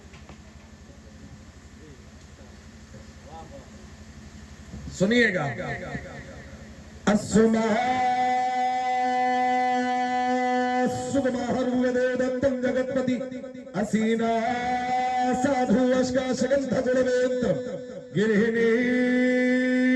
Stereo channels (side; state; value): both; identical; correlation 1.00